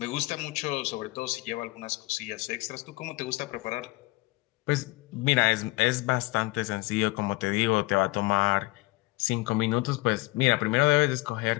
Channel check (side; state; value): right; quieter; 22.7 dB